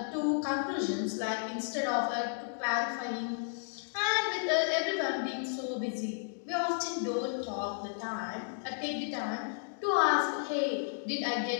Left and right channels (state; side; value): silent; right; digital silence